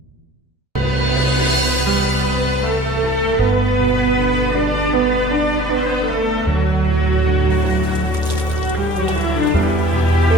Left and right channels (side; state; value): both; normal; correlation 0.47